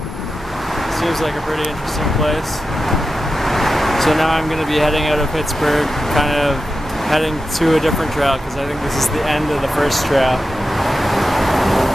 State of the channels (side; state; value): both; normal; correlation 0.91